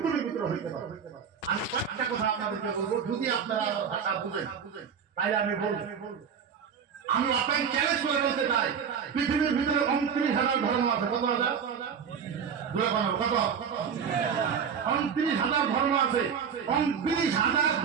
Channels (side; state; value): left; quieter; 7.0 dB